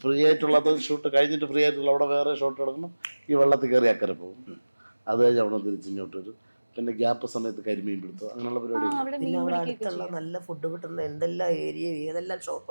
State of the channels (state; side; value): inverted; both; correlation -1.00